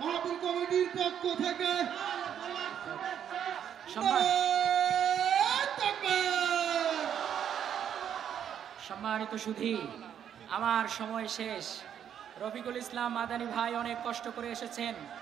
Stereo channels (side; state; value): left; quieter; 9.1 dB